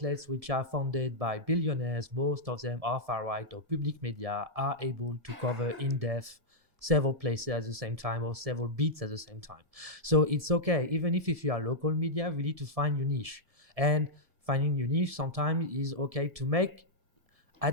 which are funded by billionaires, most of them are far right or public media, are able to cover in depth several places at the same time or several beats at the same time. So it's okay, even if you are local media, we need to find your niche. And finding your niche sometimes is okay to make,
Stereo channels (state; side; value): late; left; 1.7 ms